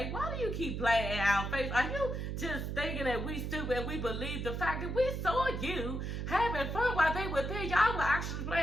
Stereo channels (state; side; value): noise; right; hum, 3 dB below the sound